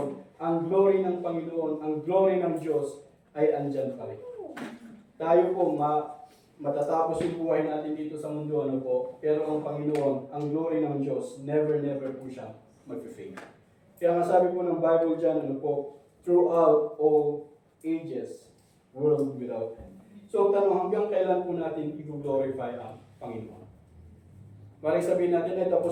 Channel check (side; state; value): both; identical; correlation 1.00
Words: ang glory ng Panginoon, ang glory ng Diyos ay andyan pa rin. Tayo po matatapos yung buhay natin dito sa mundo, pero ang Panginoon, ang glory ng Diyos, never po siya mag-fade. Kaya nga sabi po ng Bible dyan, throughout all ages, world without end. So, tanong, hanggang kailan po natin i-glorify ang Panginoon? Maring sabihin natin,